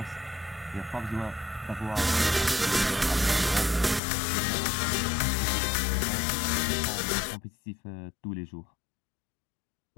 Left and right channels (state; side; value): drops out; right; at 4.0 s